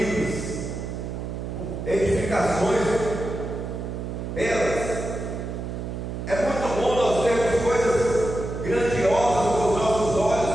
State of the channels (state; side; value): noise; right; hum, 6 dB below the sound